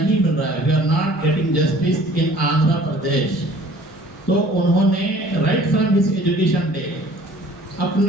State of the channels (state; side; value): normal; both; correlation 0.51